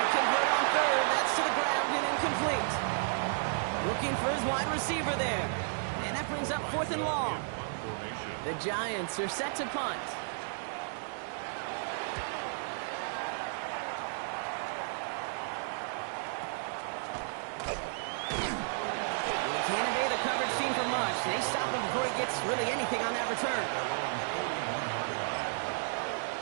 convert on 3rd. That's to the ground and incomplete. Looking for his wide receiver there. And that brings up 4th and long. The Giants are set to punt. Can't evade the coverage team for much. They stop him before he gets really anything on that return.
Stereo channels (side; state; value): left; silent; digital silence